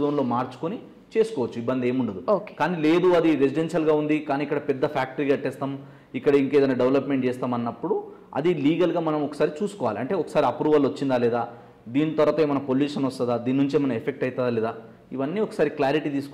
జోన్లో మార్చుకొని చేసుకోవచ్చు, ఇబ్బంది ఏముండదు. కానీ లేదు అది రెసిడెన్షియల్గా ఉంది కానీ ఇక్కడ పెద్ద ఫ్యాక్టరీ కట్టేస్తాం, ఇక్కడ ఇంకేదైనా డెవలప్మెంట్ చేస్తాం అన్నప్పుడు అది లీగల్గా మనం ఒకసారి చూసుకోవాలి. అంటే ఒకసారి అప్రూవల్ వచ్చిందా లేదా, దీని తర్వాత ఏమైనా పొల్యూషన్ వస్తుందా, దీని నుంచి ఏమైనా ఎఫెక్ట్ అవుతుందా లేదా, ఇవన్నీ ఒకసారి క్లారిటీ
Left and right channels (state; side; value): identical; both; correlation 1.00